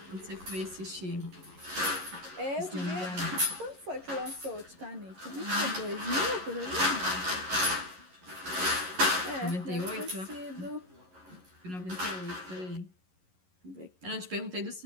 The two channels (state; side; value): late; left; 11 ms